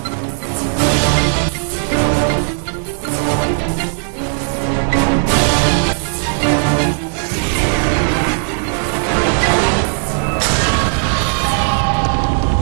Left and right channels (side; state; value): left; silent; 60 dB below the other